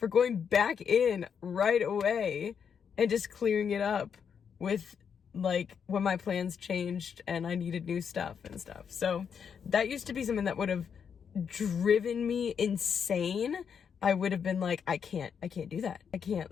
going back in right away and just clearing it up with like when my plans changed and I needed new stuff and stuff. So that used to be something that would have driven me insane. I would have been like, I can't do that. I can't,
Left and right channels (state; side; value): quieter; right; 7.1 dB